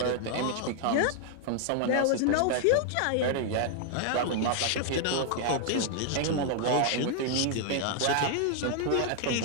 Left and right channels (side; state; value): both; different; correlation 0.00